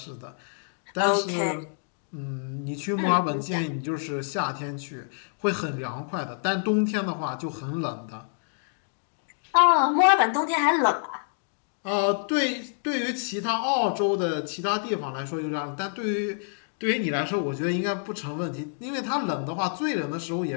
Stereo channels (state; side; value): silent; right; digital silence